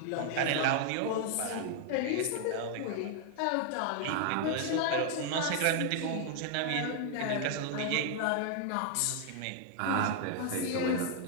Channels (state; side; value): different; both; correlation 0.00